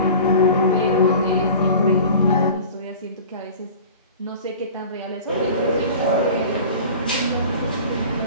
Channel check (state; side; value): inverted; both; correlation -0.40